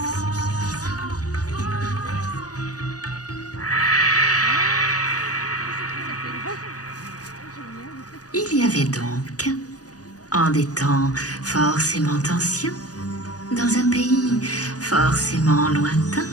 Il y avait donc, en des temps forcément anciens, dans un pays forcément lointain,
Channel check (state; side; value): late; right; 0.67 ms